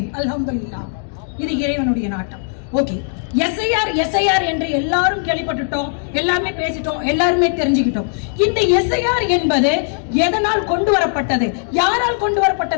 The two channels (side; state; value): right; silent; digital silence